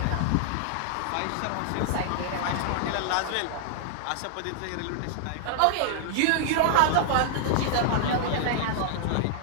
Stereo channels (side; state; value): both; different; correlation -0.01